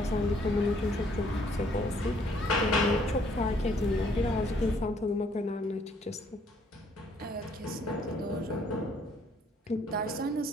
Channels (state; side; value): normal; both; correlation 0.65